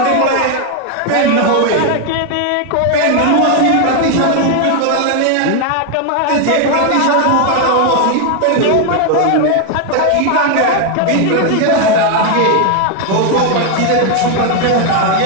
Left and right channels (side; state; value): both; different; correlation 0.01